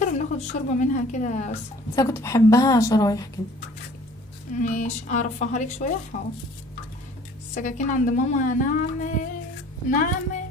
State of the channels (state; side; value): normal; both; correlation 0.52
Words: وبناخد الشوربه منها كده بس انا كنت بحبها شرايح كده. ماشي اعرفها لك شويه. حاضر. السكاكين عند ماما ناعمه.